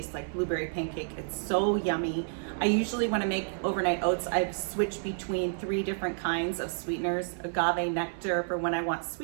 like blueberry pancake. It's so yummy. I usually when I make overnight oats, I've switched between 3 different kinds of sweeteners. Agave nectar for when I want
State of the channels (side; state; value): left; silent; 58 dB below the other